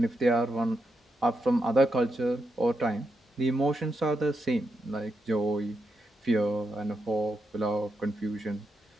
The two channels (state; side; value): normal; both; correlation 0.84